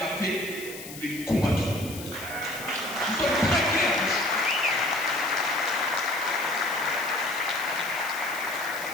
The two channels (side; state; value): left; noise; hiss, 13 dB below the sound